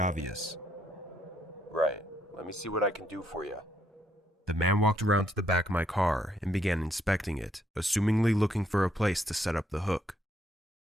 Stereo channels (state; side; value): normal; both; correlation 0.73